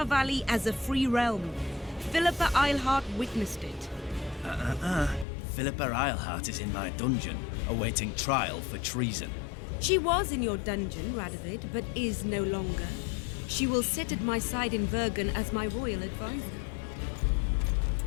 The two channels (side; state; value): right; drops out; at 5.2 s